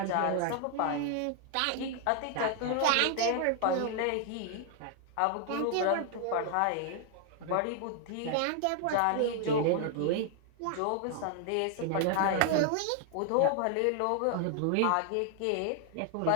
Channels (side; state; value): both; different; correlation 0.00